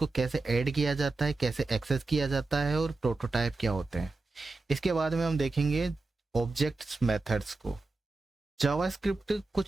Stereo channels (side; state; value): left; quieter; 3.5 dB